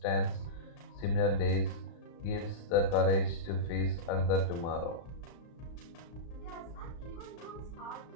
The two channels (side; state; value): right; late; 36 ms